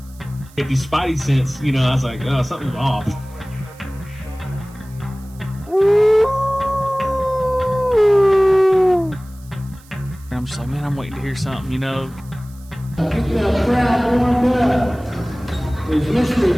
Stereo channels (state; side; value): noise; right; hiss, 26 dB below the sound